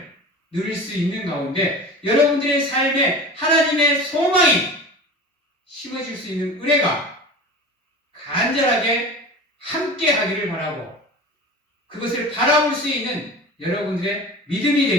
누릴 수 있는 가운데 여러분들의 삶에 하나님의 소망이 심어질 수 있는 은혜가 간절하게 함께 하기를 바라고 그것을 바라볼 수 있는 여러분들의 믿음이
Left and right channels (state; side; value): normal; both; correlation 0.35